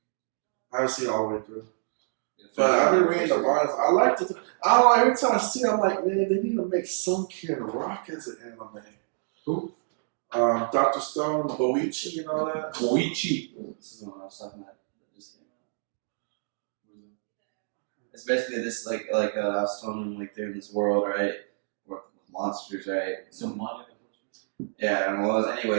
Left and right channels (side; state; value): left; silent; digital silence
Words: I haven't seen it all the way through. But I've been reading the mangas. I like it. I don't know, every time I see it, I'm like, man, they need to make some kid rock as an anime. Who? Dr. Stone, Boichi, and all that. Boichi. This is what I was talking about. It's basically this like I was telling them, like they're in this world, right? Or monsters, right? So Manga. Yeah, and well,